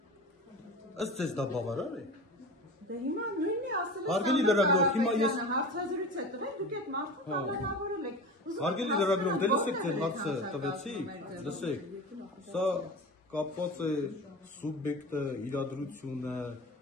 Ըստ ձեզ դա բավարար է։ Դե հիմա նույնն է ասել։ Հարգելի լրագրող, հիմա ես հարցազրույց է տվել, դուք այդ մարդուն կալանավորել եք։ Հարգելի լրագրող, դե լսեք, թե հարցը տվեցի, լսեք։ Սա կապված է սուբյեկտը, իրադրությունը,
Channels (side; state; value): both; normal; correlation 0.32